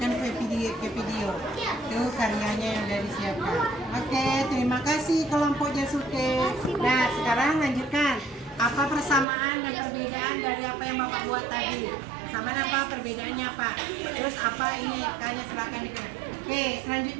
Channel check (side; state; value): left; drops out; at 9.2 s